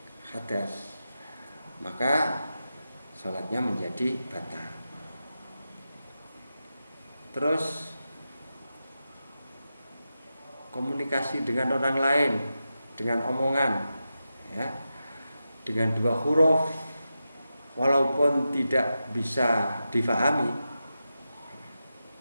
hadas, maka sholatnya menjadi batal. Terus komunikasi dengan orang lain dengan omongan ya, dengan dua huruf walaupun tidak bisa difahami,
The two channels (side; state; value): both; inverted; correlation -0.90